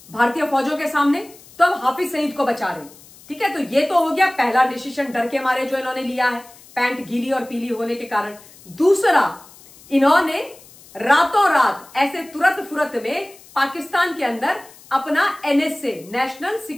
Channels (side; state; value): left; noise; hiss, 23 dB below the sound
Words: भारतीय फौजों के सामने, तो अब हाफिज सईद को बचा रहे। ठीक है, तो ये तो हो गया पहला डिसीजन डर के मारे जो इन्होंने लिया है, पैंट गीली और पीली होने के कारण। दूसरा, इन्होंने रातों रात ऐसे तुरंत फुरत में पाकिस्तान के अंदर अपना NSA, national